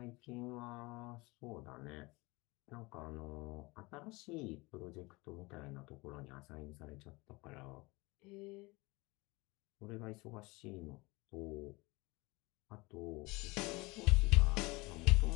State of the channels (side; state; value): right; quieter; 24.1 dB